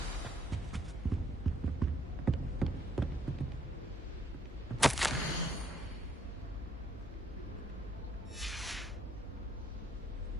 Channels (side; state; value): both; normal; correlation 0.69